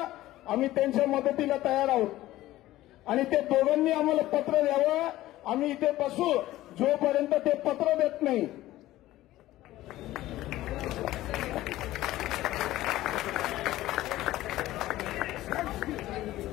आम्ही त्यांच्या मदतीला तयार आहोत आणि ते दोघांनी आम्हाला पत्र द्यावं. आम्ही इथे बसू जोपर्यंत ते पत्र देत नाही.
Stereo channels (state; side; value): quieter; right; 15.7 dB